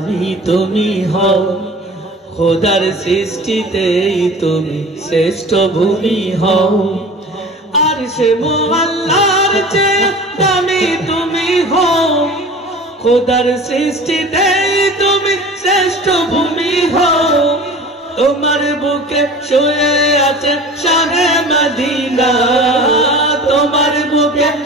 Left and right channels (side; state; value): both; normal; correlation 0.40